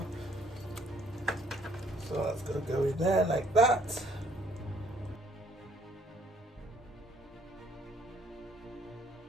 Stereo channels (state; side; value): normal; both; correlation 0.63